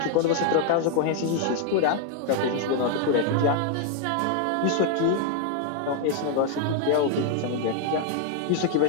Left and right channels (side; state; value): both; different; correlation 0.00